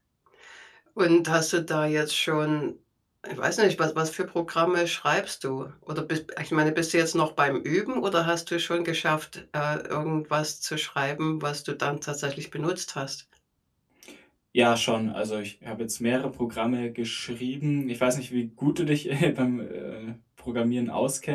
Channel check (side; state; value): both; identical; correlation 1.00